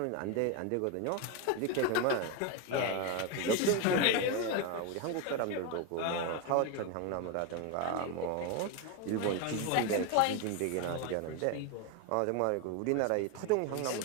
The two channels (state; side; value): different; both; correlation 0.02